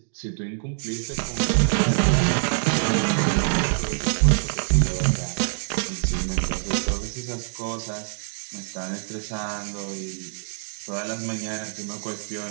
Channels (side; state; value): left; silent; digital silence